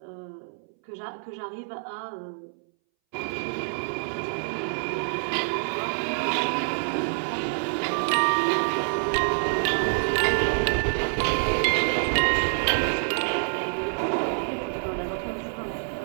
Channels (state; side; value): silent; left; 60 dB below the other